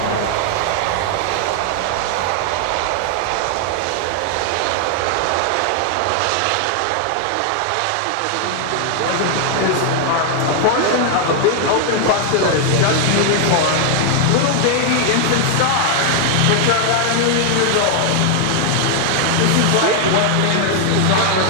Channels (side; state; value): both; different; correlation 0.00